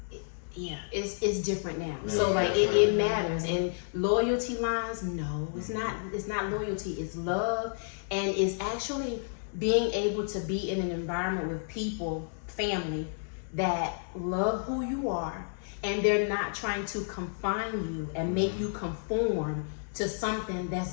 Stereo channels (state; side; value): silent; right; digital silence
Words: it's different now. Yeah, so like it matters. And loyalty lines, no, it's not loyalty, it's love. And it's actually being able to be in an environment with people, family, that love who you are, and they're not trying to confine you and make you conform to something